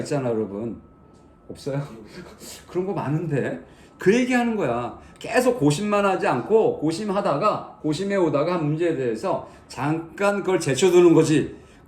여러분. 없어요? 그런 거 많은데 그 얘기하는 거야. 계속 고심만 하지 않고 고심해오다가 한 문제에 대해서 잠깐 그걸 제쳐두는 거지.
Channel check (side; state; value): both; identical; correlation 1.00